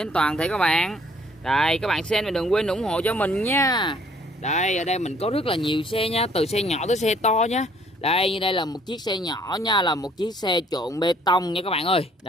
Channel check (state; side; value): normal; both; correlation 0.61